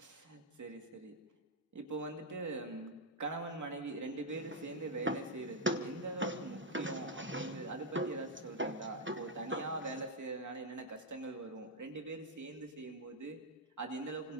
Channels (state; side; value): normal; both; correlation 0.00